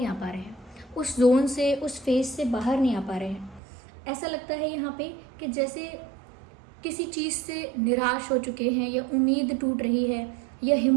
आ पा रहे हैं, उस जोन से, उस फेज से बाहर नहीं आ पा रहे हैं। ऐसा लगता है यहाँ पे कि जैसे किसी चीज़ से निराश हो चुके हैं या उम्मीद टूट रही है या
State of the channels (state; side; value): drops out; left; at 3.6 s